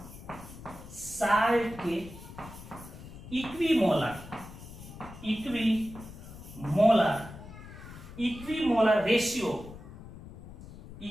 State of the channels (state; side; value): noise; left; rumble, 15 dB below the sound